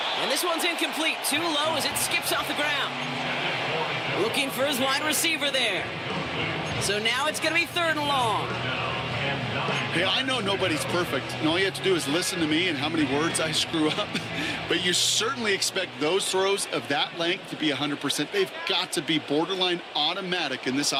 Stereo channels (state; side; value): identical; both; correlation 1.00